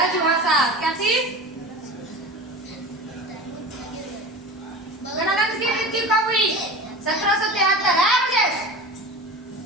भाषा क्या थी? घनानंद की मृत्यु कब हुई? 1773 है मुझे,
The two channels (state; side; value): normal; both; correlation 0.32